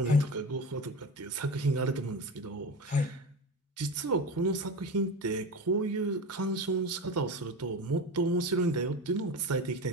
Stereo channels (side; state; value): both; normal; correlation 0.26